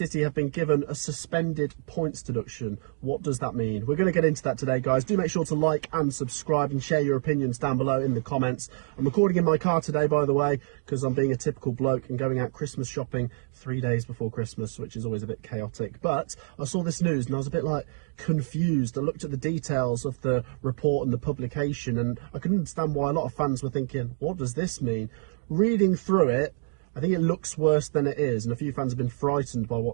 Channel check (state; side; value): silent; left; digital silence